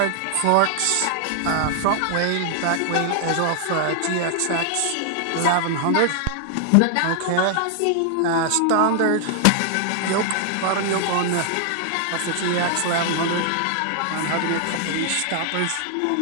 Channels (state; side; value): different; both; correlation 0.00